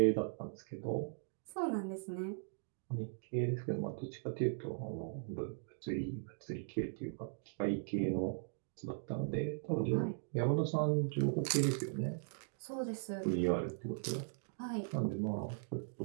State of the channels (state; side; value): silent; left; digital silence